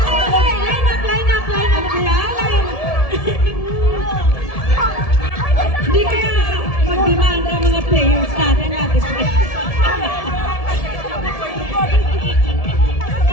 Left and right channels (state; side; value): late; right; 1.7 ms